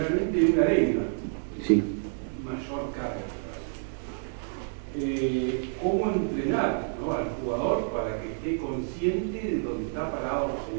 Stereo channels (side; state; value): left; silent; digital silence